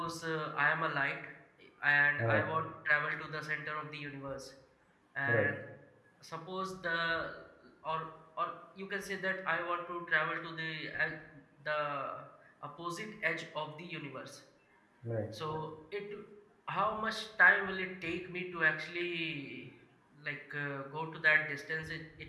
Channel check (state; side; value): identical; both; correlation 1.00